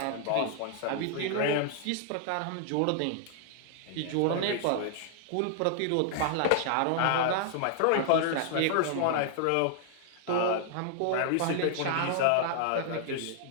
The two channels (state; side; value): different; both; correlation -0.01